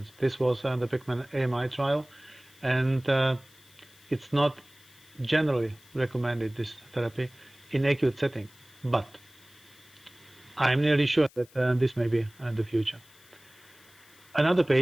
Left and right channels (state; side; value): noise; left; hiss, 26 dB below the sound